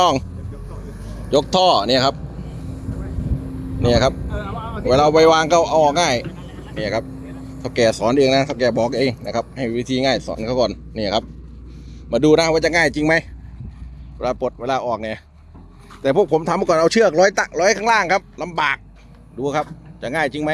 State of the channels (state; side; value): identical; both; correlation 1.00